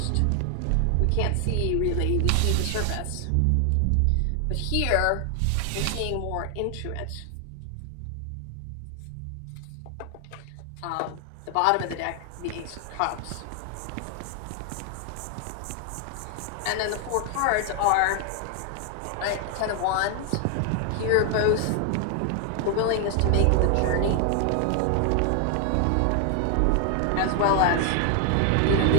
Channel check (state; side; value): different; both; correlation 0.00